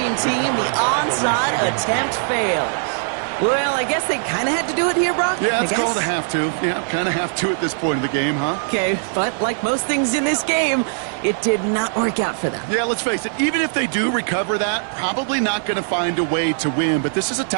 team. The onside attempt fails. Well, I guess they kind of had to do it here, Brock? Yeah, it's called a have to. Yeah, kind of have to at this point in the game, huh? Okay, but like most things in this game, it did not work out for them. Yeah, let's face it, even if they do recover that, probably not going to find a way to win. But this is a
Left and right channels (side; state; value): left; silent; 60 dB below the other